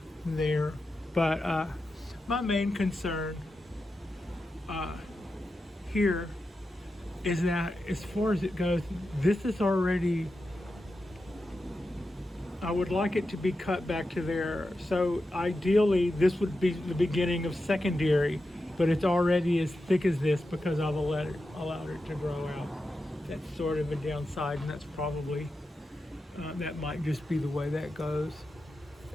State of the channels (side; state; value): both; normal; correlation 0.90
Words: But my main concern here is that, as far as it goes, this is already, I would like it to be cut back to there. So ideally, this would be the beginning of secondary, but it's already as thick as this because I've allowed it to grow out. That's sort of a downside, and that's probably, that might just be the way that goes.